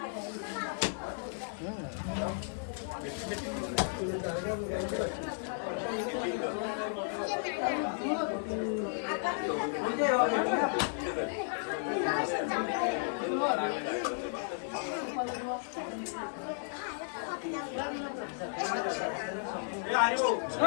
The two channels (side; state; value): right; silent; digital silence